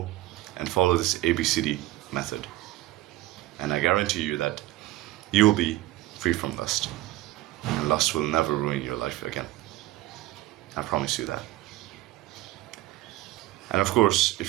and follow this ABCD method. And I guarantee you that you will be free from lust. And lust will never ruin your life again. I promise you that. And of course,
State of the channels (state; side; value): quieter; left; 16.3 dB